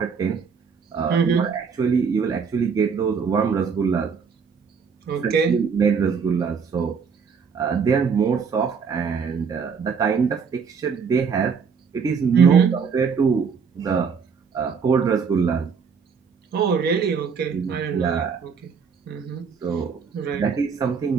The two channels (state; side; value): quieter; left; 6.0 dB